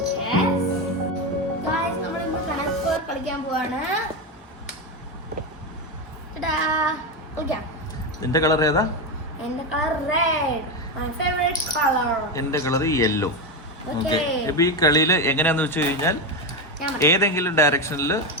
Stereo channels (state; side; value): normal; both; correlation 0.12